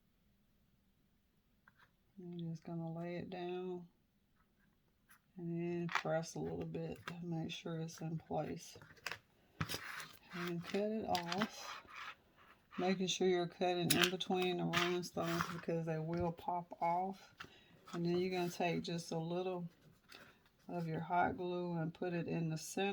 I'm just going to lay it down and then press a little bit to make sure it's in place. And cut it off. Making sure you're cutting in between the rhinestones because they will pop off. And then you're going to take just a little of your hot glue and put it in the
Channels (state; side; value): identical; both; correlation 1.00